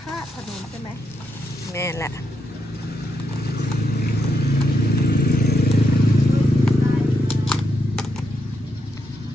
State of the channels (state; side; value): normal; both; correlation 0.81